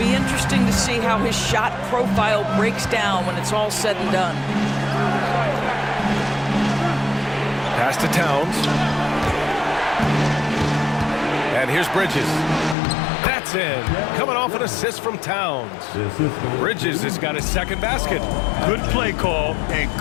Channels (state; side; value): drops out; right; at 12.8 s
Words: interesting to see how his shot profile breaks down when it's all said and done. Pass to Towns. And here's Bridges. That's in. Coming off an assist from Towns. Bridges has got his second basket. Good play call and